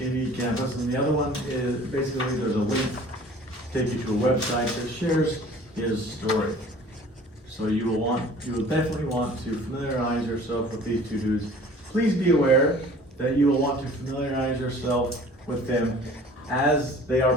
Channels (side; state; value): both; normal; correlation 0.48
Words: Campus, and the other one is basically there's a link to take you to a website that shares his story. So you will definitely want to familiarize yourself with these two dudes. Please be aware that you will want to familiarize yourself with them as they are